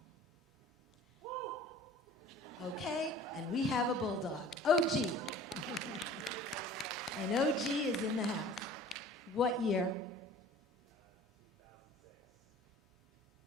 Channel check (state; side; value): normal; both; correlation 0.46